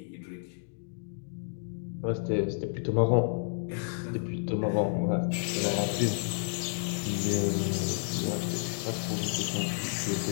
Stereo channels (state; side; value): silent; right; digital silence